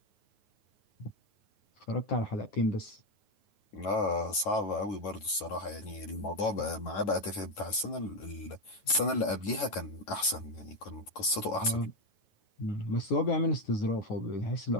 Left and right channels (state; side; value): late; right; 9.3 ms